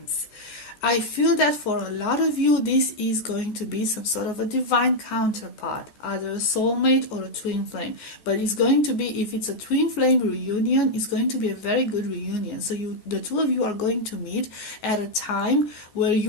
I feel that for a lot of you, this is going to be some sort of a divine counterpart, either a soulmate or a twin flame. But it's going to be, if it's a twin flame reunion, it's going to be a very good reunion. So the two of you are going to meet at a time where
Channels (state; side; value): late; right; 14 ms